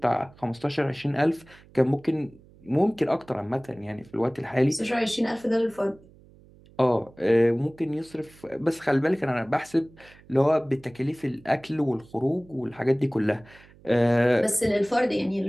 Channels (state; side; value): noise; right; hum, 25 dB below the sound